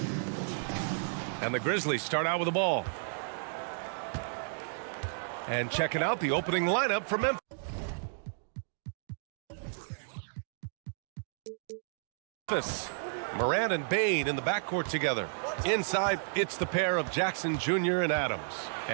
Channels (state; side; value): silent; left; digital silence